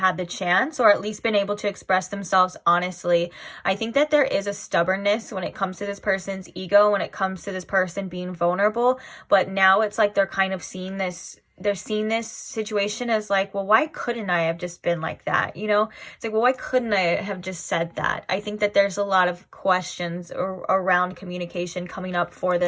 the chance, or at least been able to express themselves honestly. I think that there is a stubbornness when it comes to this person's ego, when it comes to this person being vulnerable, but now it's like they're kind of seeing this, they're seeing this situation as like, well, why couldn't I have just been like that? You know, it's like, well, why couldn't I have just said that? I think that there's a lot of questions around communication coming up for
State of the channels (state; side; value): identical; both; correlation 1.00